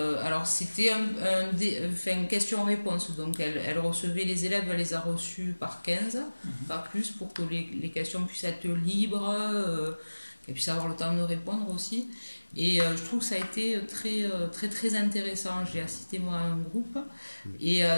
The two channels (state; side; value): inverted; both; correlation -1.00